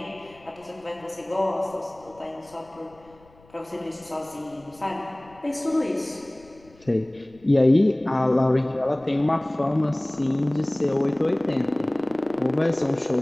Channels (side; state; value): left; noise; rumble, 28 dB below the sound